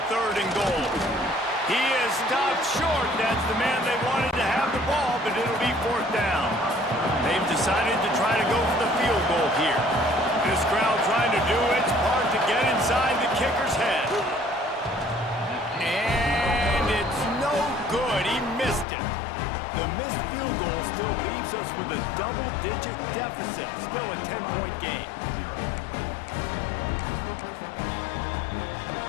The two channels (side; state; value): right; drops out; at 18.9 s